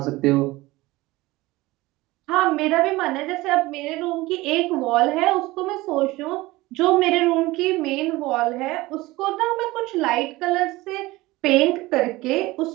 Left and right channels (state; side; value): quieter; left; 19.8 dB